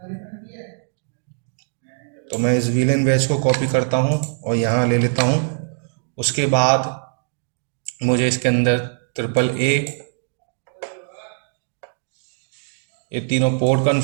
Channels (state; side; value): silent; left; digital silence